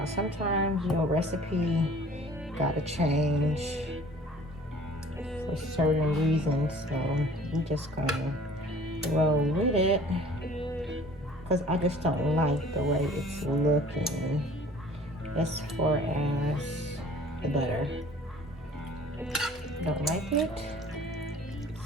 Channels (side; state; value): both; normal; correlation 0.50